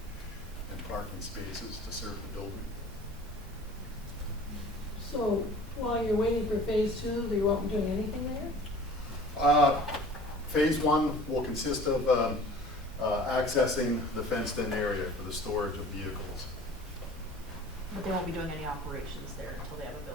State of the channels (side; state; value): both; normal; correlation 0.45